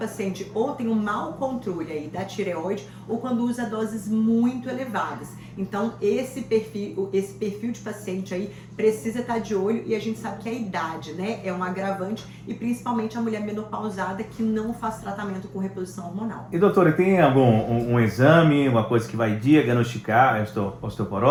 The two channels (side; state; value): both; identical; correlation 1.00